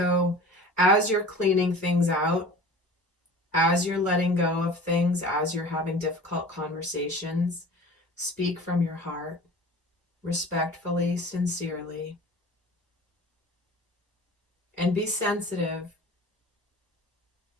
as you're cleaning things out, as you're letting go of things, as you're having difficult conversations, speak from your heart, respectfully, sincerely, and be sensitive.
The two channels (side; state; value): both; normal; correlation 0.41